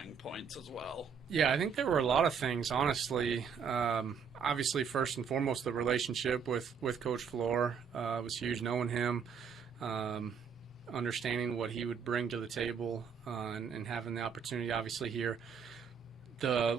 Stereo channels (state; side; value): quieter; left; 6.6 dB